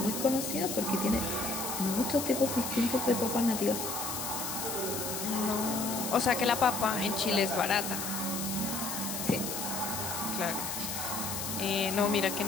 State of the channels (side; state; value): left; noise; hiss, 4 dB below the sound